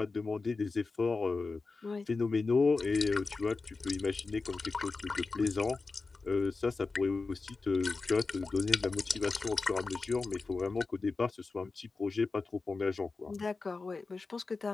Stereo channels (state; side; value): quieter; right; 4.0 dB